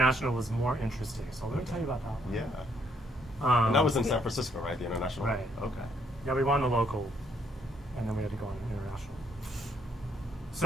was more interesting. So let me tell you about that one. Yeah. And that was in San Francisco, right? The international. Right. Okay. Yeah, we won the local, and then we had to go on international.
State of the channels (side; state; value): both; normal; correlation 0.70